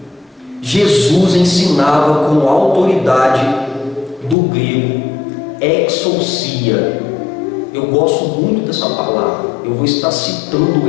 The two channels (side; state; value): right; drops out; at 4.4 s